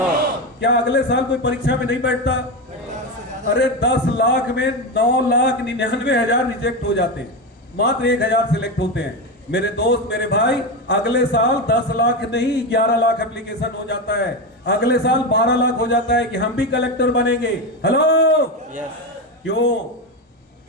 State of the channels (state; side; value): normal; both; correlation 0.15